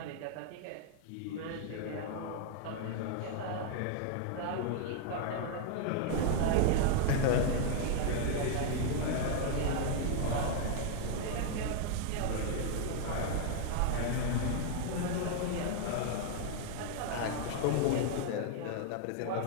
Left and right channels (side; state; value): both; different; correlation 0.00